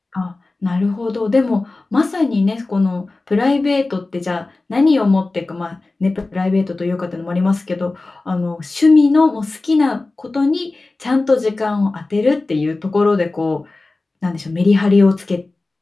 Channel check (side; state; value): right; quieter; 3.3 dB